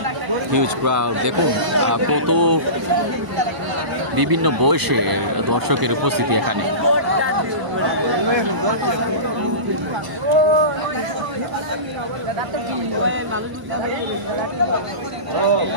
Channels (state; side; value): late; left; 1.0 ms